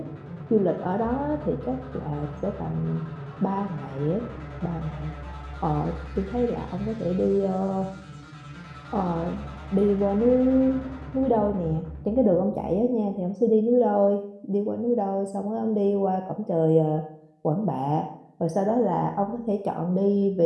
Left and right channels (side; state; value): both; identical; correlation 1.00